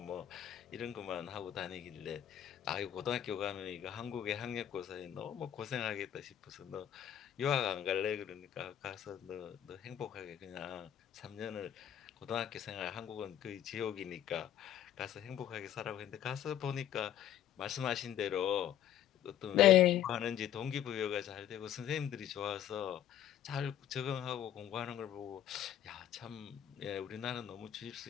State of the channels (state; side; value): quieter; right; 10.7 dB